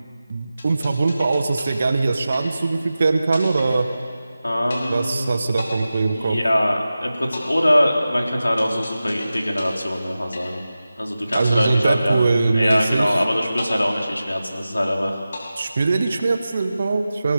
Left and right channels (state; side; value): inverted; both; correlation -0.94